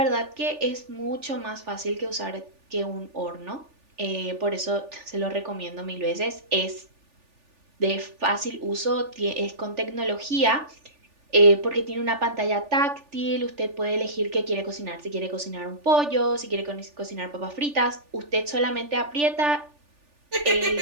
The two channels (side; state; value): left; late; 3.4 ms